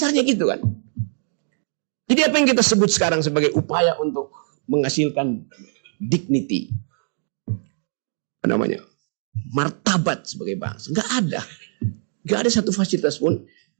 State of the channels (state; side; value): silent; left; 61 dB below the other